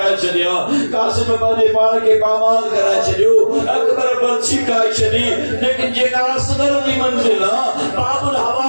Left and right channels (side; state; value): both; inverted; correlation -1.00